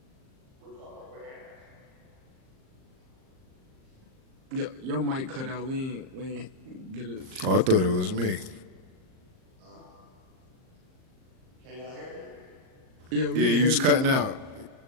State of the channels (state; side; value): late; left; 38 ms